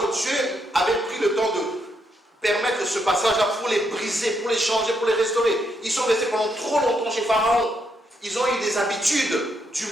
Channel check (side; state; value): both; normal; correlation 0.78